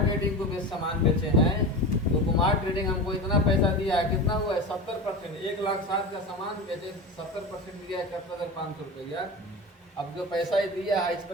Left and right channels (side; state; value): both; normal; correlation 0.26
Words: को बेच सामान बेचे हैं, तो कुमार ट्रेडिंग हमको इतना पैसा दिया है, कितना हुआ है, 70%। 1,07,000 का सामान बेचे, 70% दिया है 71,500 रुपया। अब जो पैसा ही दिया है, इस